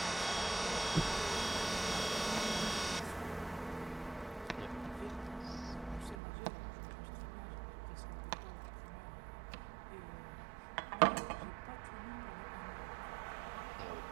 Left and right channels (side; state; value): left; drops out; at 6.2 s